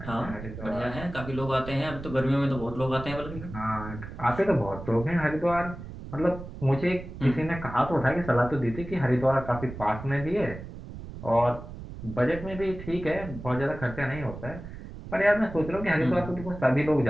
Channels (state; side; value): noise; right; rumble, 11 dB below the sound